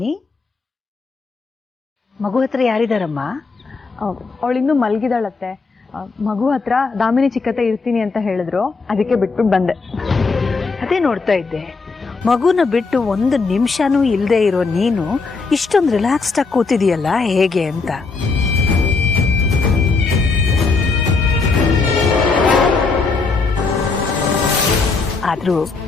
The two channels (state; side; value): quieter; right; 4.2 dB